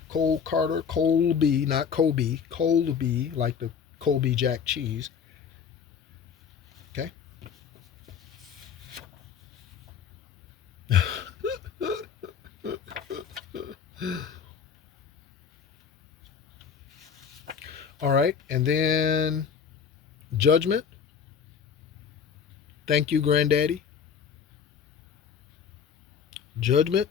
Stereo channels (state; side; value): quieter; right; 7.0 dB